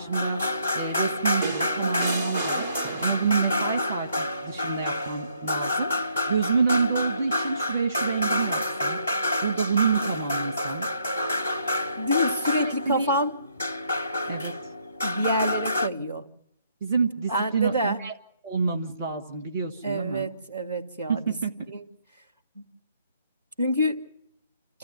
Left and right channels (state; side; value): inverted; both; correlation -0.70